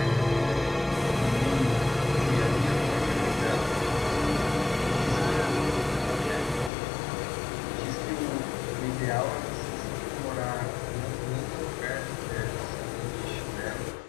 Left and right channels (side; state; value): right; drops out; at 6.7 s